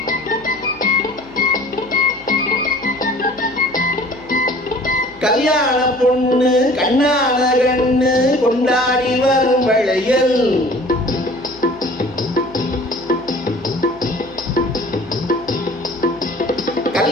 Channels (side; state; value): left; noise; hum, 24 dB below the sound